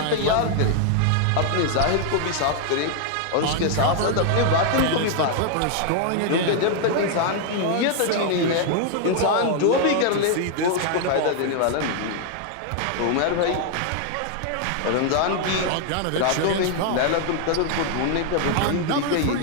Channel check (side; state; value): both; different; correlation 0.00